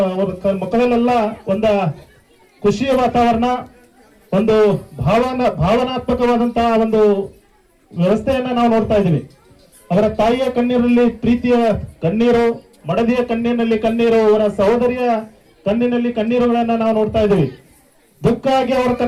ಅವ್ರ ಮಕ್ಕಳಲ್ಲೆಲ್ಲ ಒಂದ ಖುಷಿಯ ವಾತಾವರಣ, ಒಂದು ಭಾವನಾತ್ಮಕವಾದಂತಹ ಒಂದು ವ್ಯವಸ್ಥೆಯನ್ನ ನಾವು ನೋಡ್ತಾ ಇದ್ದೀವಿ. ಅವರ ತಾಯಿಯ ಕಣ್ಣೀರಲ್ಲಿ ಪ್ರೀತಿಯ ಕಣ್ಣೀರು, ಮಡದಿಯ ಕಣ್ಣಿನಲ್ಲಿ ಕಣ್ಣೀರು, ಅವರ ಸಹೋದರಿಯ ಕಣ್ಣಿನಲ್ಲಿ ಕಣ್ಣೀರುಗಳನ್ನ ನಾವು ನೋಡ್ತಾ ಇದ್ದೀವಿ. ದುಃಖ ಆಗಿ ಅವರ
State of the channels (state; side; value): identical; both; correlation 1.00